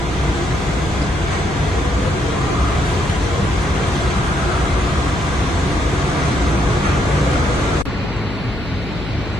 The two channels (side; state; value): left; noise; hum, 10 dB below the sound